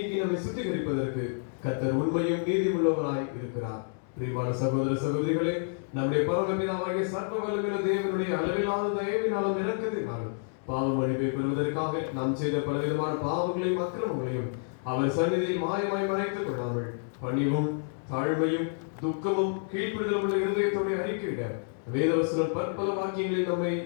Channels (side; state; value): right; silent; digital silence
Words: நம்மை சுத்திகரிப்பதற்கு கர்த்தர் உண்மையும் நீதியுள்ளவராய் இருக்கிறார். பிரியமான சகோதர சகோதரிகளே, நம்முடைய பரமபிதாவாகிய சர்வ வல்லமையுள்ள தேவனுடைய அளவிலான தயவினாலும் இரக்கத்தினாலும் பாவ மன்னிப்பை பெறுவதற்காக நாம் செய்த பலவிதமான பாவங்களையும் அக்கிரமங்களையும் அவர் சந்நிதியில் மாயமாய் மறைத்துக் கொள்ளாமல் பணிவும் தாழ்மையும் துக்கமும் கீழ்ப்படுதலும் உள்ள இருதயத்தோடு அறிக்கையிட வேதவசனம் பற்பல வாக்கியங்களில் நம்மை